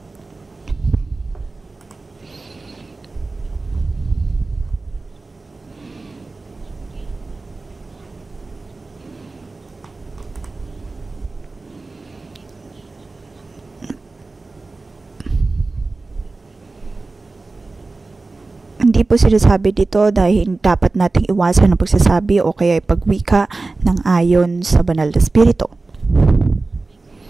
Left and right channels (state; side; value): quieter; left; 3.5 dB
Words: Hindi po sinasabi dito dahil dapat nating iwasan ang pagsasabi o kaya pagwika ng ayon sa banal na espiritu.